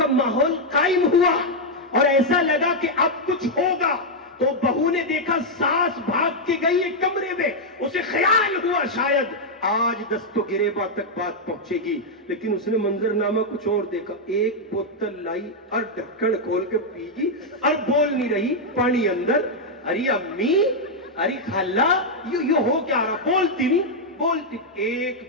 ماحول قائم ہوا اور ایسا لگا کہ اب کچھ ہوگا، تو بہو نے دیکھا ساس بھاگ کے گئی ہے کمرے میں. اسے خیال ہوا شاید آج دست و گریباں تک بات پہنچے گی، لیکن اس نے منظر نامہ کچھ اور دیکھا. ایک بوتل لائی اور ڈھکن کھول کے پی گی اور بول نہیں رہی، پانی اندر. ارے امی، ارے خالہ، یہ ہو کیا رہا؟ بولتی نہیں بولتی. ایک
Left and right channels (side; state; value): both; normal; correlation -0.02